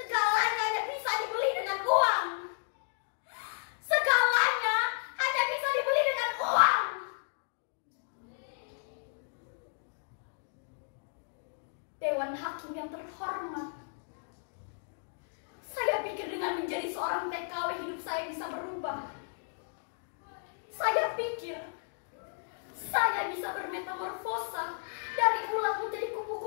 hanya bisa dibeli dengan uang. Segalanya hanya bisa dibeli dengan uang. Dewan Hakim yang terhormat, saya pikir dengan menjadi seorang TKW hidup saya bisa berubah. Saya pikir saya bisa bermetamorfosa dari ulat menjadi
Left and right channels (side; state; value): right; silent; digital silence